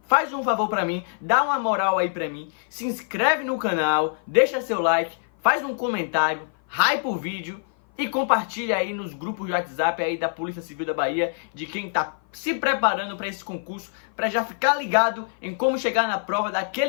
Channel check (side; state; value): right; silent; 55 dB below the other